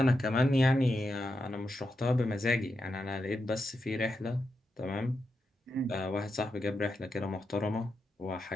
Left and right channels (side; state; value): both; normal; correlation 0.86